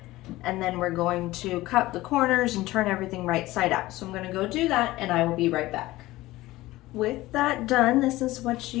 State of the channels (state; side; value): quieter; right; 17.9 dB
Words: and then we're going to cut the corners and turn everything right side out. So I'm going to go do that, and I will be right back. With that done, this is what